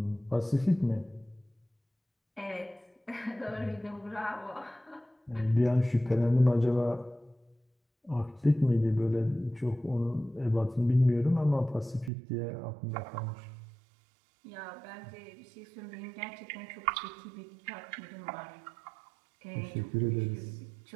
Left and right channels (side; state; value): left; drops out; at 12.1 s